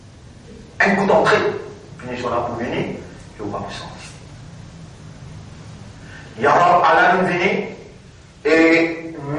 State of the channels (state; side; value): identical; both; correlation 1.00